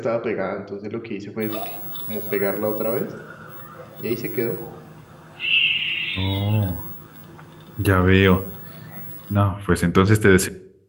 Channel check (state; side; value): identical; both; correlation 1.00